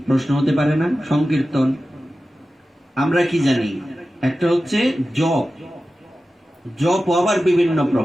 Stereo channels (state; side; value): normal; both; correlation 0.94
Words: প্রশ্ন হতে পারে না? সংকীর্তন আমরা কি জানি? একটা হচ্ছে জপ, জপ আবার বিভিন্ন